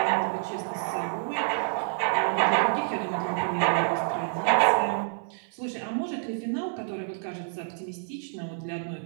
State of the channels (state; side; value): silent; left; 59 dB below the other